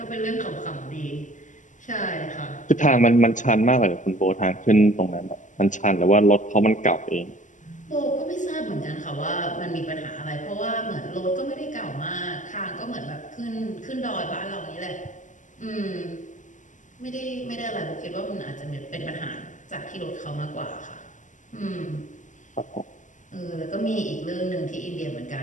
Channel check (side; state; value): right; late; 0.37 ms